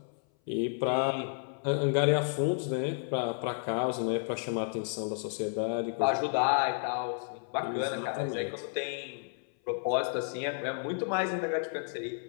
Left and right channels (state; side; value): silent; right; 57 dB below the other